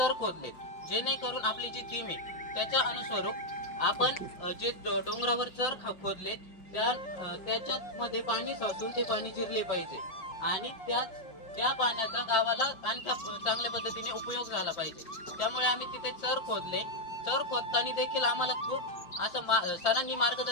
खोदले, जेणेकरून आपली जी थीम आहे त्याच्या अनुस्वरूप आपण जे डोंगरावर चर खोदले त्याच्यात मध्ये पाणी साचून ते पाणी जिरले पाहिजे आणि त्या पाण्याचा गावाला आणखी चांगल्या पद्धतीने उपयोग झाला पाहिजे. त्यामुळे आम्ही तिथे चर खोदले. चर खोदताना देखील आम्हाला खूप असं सरांनी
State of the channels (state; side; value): late; right; 5.4 ms